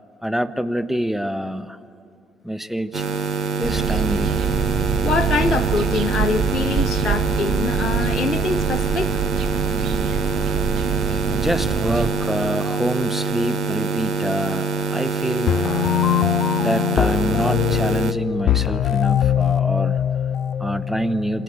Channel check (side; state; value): both; normal; correlation 0.58